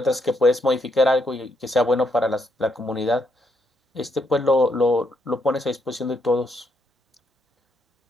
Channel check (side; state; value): both; normal; correlation 0.76